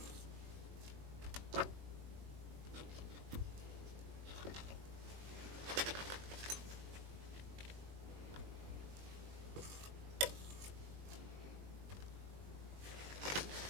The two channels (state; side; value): late; left; 20 ms